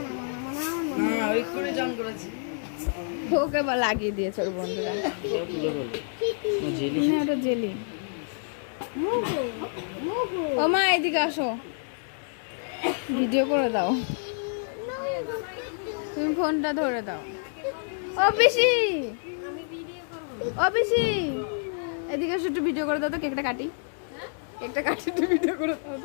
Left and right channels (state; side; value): silent; right; digital silence